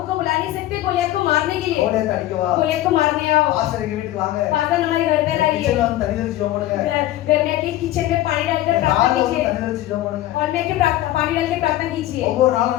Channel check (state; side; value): quieter; right; 14.7 dB